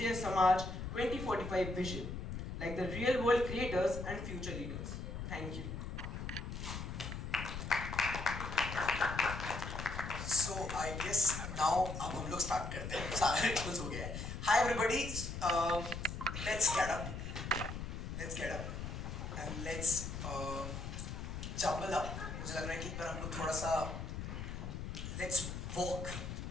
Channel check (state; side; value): noise; left; rumble, 6 dB below the sound